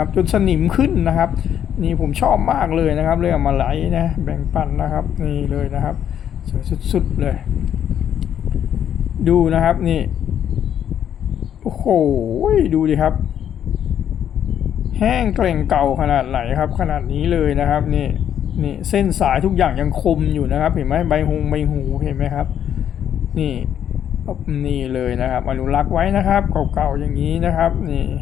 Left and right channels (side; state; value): right; quieter; 9.6 dB